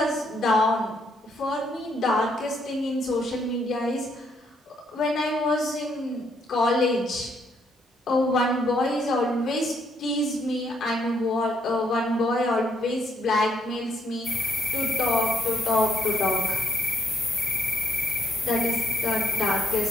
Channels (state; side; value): normal; both; correlation 0.74